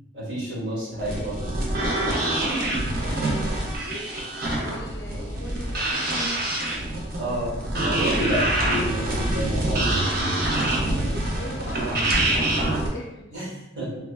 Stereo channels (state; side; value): normal; both; correlation 0.43